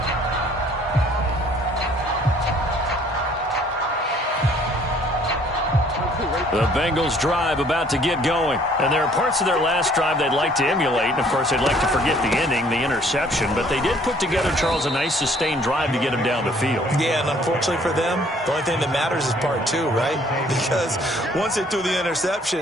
The Bengals drive about to get going. And there are parts of their last drive they'd like to emulate. And, of course, they'd like to forget the ending, the interception. But they did put together, Charles, a nice sustained drive to get them down the field. Yeah, and unfortunately for them, the only thing that matters is part 2, right? Because once they threw the interception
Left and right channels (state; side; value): normal; both; correlation 0.59